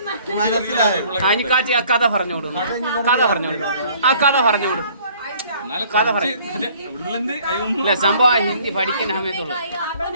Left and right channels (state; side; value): inverted; both; correlation -0.57